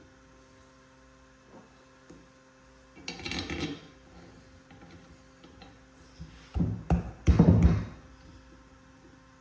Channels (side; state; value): both; identical; correlation 1.00